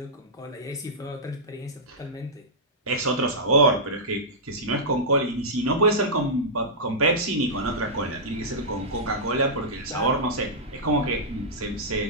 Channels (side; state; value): both; normal; correlation -0.12